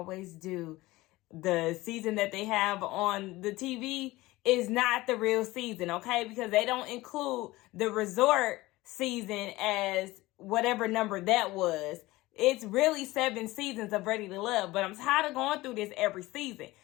do. The season that they have on the TV is not the real season, okay? Because they don't include the resort season as whatever number that was. It's really 7 seasons of Ready to Love, but I'm tired of going through this every season.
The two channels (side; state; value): right; quieter; 19.2 dB